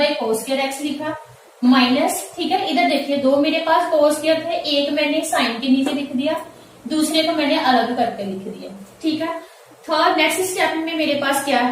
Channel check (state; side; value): identical; both; correlation 1.00